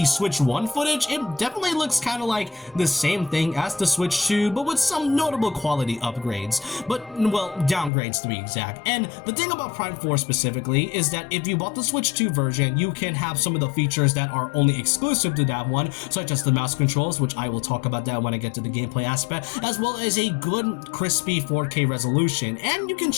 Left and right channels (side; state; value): right; drops out; at 7.9 s